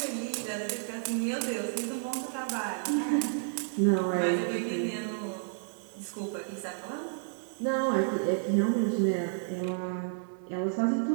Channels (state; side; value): silent; left; 57 dB below the other